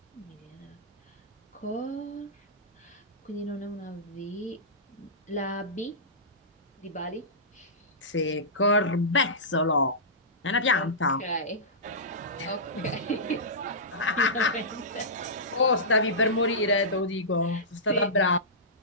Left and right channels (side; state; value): both; normal; correlation -0.18